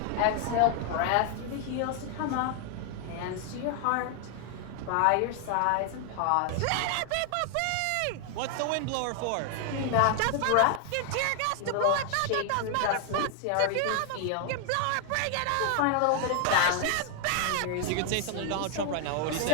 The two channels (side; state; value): both; different; correlation 0.00